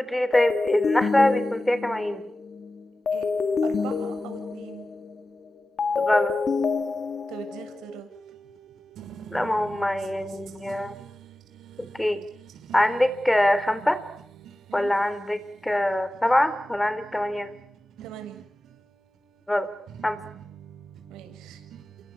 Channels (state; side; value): normal; both; correlation 0.95